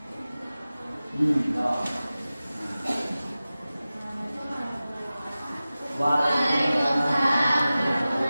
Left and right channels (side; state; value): both; inverted; correlation -0.96